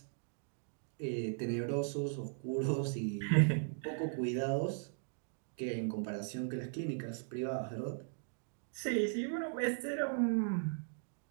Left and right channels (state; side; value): silent; left; digital silence